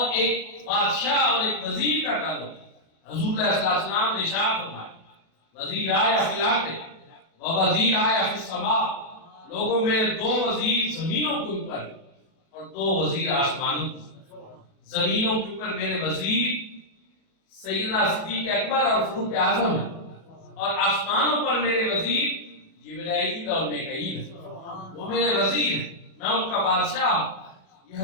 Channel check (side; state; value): right; late; 37 ms